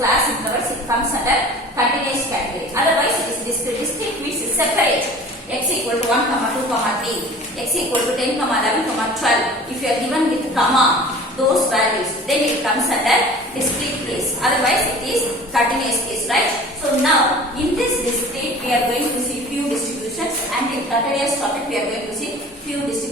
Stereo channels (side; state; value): both; normal; correlation 0.43